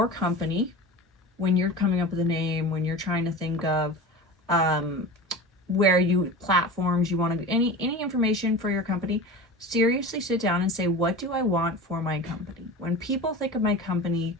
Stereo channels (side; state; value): both; normal; correlation 0.32